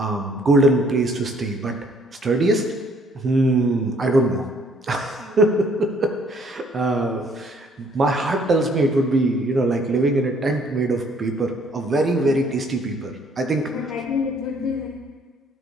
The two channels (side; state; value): both; normal; correlation 0.62